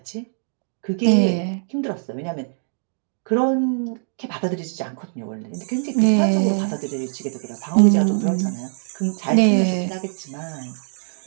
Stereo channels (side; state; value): left; silent; 64 dB below the other